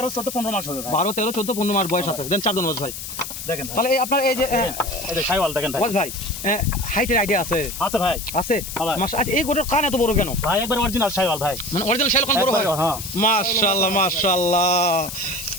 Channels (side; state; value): left; noise; hiss, 9 dB below the sound